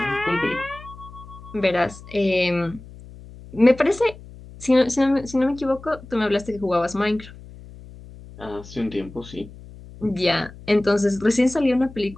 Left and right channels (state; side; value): noise; left; hum, 18 dB below the sound